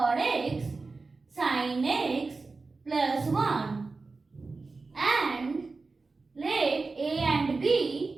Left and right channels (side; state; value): left; quieter; 3.9 dB